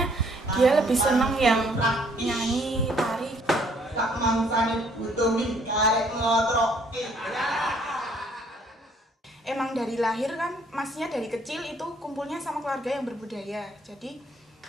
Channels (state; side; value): normal; both; correlation 0.63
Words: dia lebih seneng yang nyanyi, tari. Tak mangsane butuh karek ngotroke. Emang dari lahir kan, masnya dari kecil itu kumpulnya sama keluarga yang berbudaya. Jadi